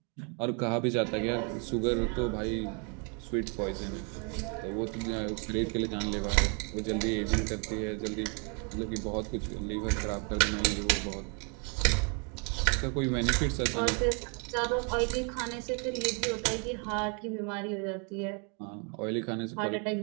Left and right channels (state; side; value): quieter; left; 36.5 dB